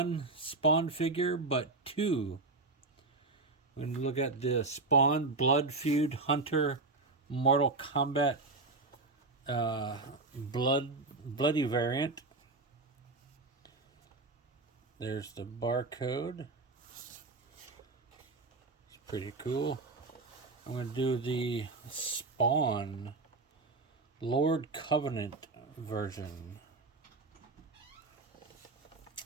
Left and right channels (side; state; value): left; quieter; 3.5 dB